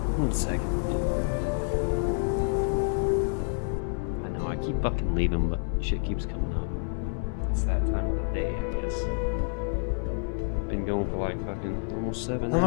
One second. I know, I keep fucking leaving, but shit keeps coming up. It's that time of the day, I guess. Been going for like fucking almost 7 hours. I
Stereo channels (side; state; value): right; silent; 59 dB below the other